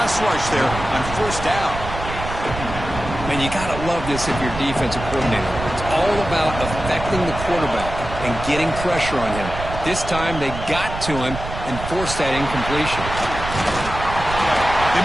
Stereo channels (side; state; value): right; noise; rumble, 8 dB below the sound